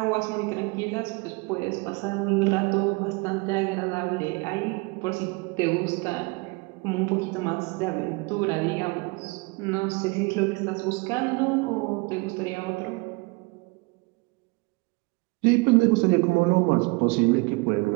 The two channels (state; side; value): quieter; left; 27.7 dB